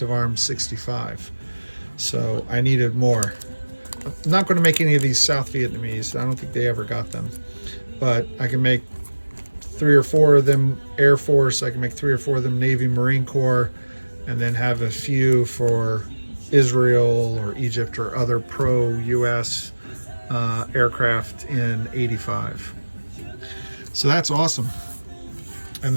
of Arms 65. So I needed more. I'm not going to make any of these South Vietnamese. I don't think they ever got them. But I can make 3 or 4 of them Air Force. I can make 3 or 4 of them Navy Marine Corps, and then have a few for Israel or Egypt or other pro-US aircraft in 85. So that's awesome. And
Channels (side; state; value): both; inverted; correlation -1.00